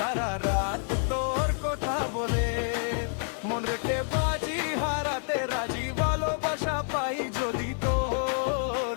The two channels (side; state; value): right; silent; 59 dB below the other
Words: রাত তোর কথা বলে। মন রেখে বাজি হারাতে রাজি, ভালোবাসা পাই যদি তোর।